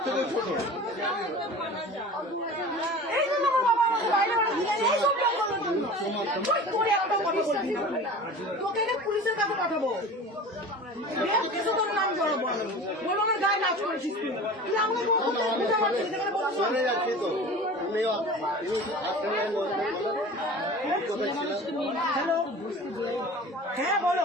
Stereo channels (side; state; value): both; normal; correlation 0.38